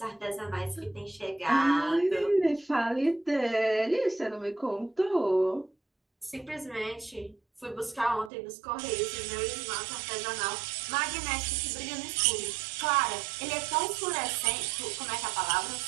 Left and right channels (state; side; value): drops out; left; at 8.3 s